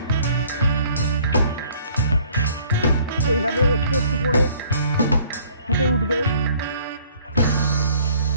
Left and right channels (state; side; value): inverted; both; correlation -0.58